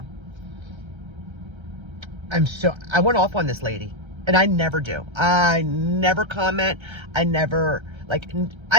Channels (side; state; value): left; late; 1.3 ms